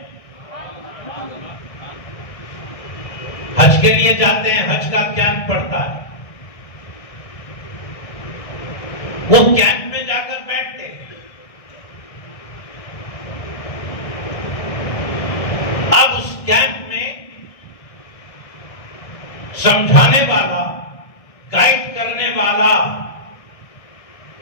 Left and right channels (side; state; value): right; late; 1.6 ms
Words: حج کے لیے جاتے ہیں، حج کا کیمپ پڑتا ہے، وہ کیمپ میں جا کر بیٹھتے ہیں۔ اب اس کیمپ میں سمجھانے والا، گائیڈ کرنے والا،